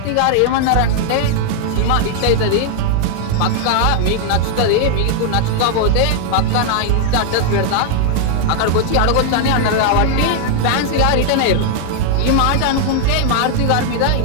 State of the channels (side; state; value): both; different; correlation 0.00